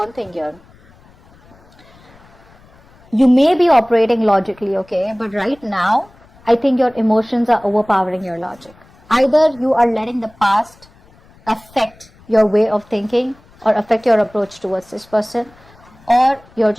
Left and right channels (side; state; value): left; noise; rumble, 28 dB below the sound